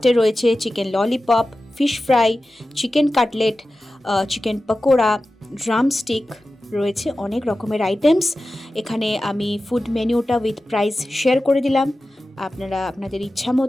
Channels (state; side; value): normal; both; correlation 0.94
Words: রয়েছে, chicken lollipop, fish fry, chicken cutlet, chicken pakora, drumstick, রয়েছে অনেক রকমের আইটেমস। এখানে আমি ফুড মেনুটা উইথ প্রাইস শেয়ার করে দিলাম, আপনারা আপনাদের ইচ্ছা